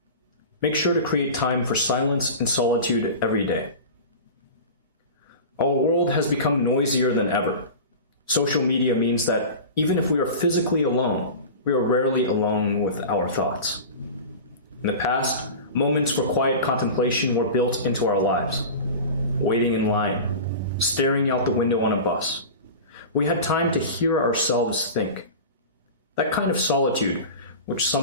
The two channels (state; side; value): inverted; both; correlation -0.32